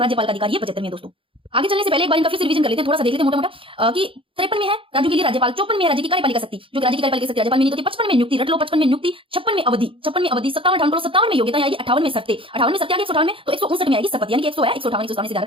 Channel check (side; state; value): left; late; 0.26 ms